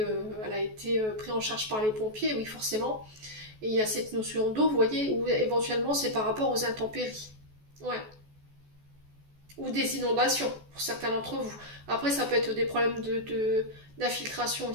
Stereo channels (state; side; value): late; left; 14 ms